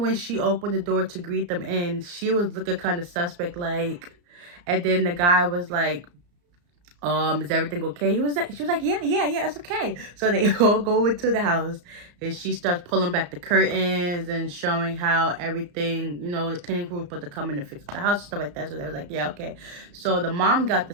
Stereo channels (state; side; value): late; left; 34 ms